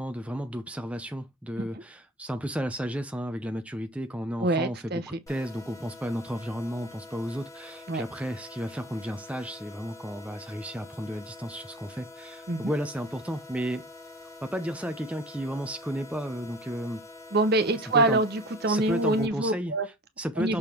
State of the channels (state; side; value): normal; both; correlation 0.45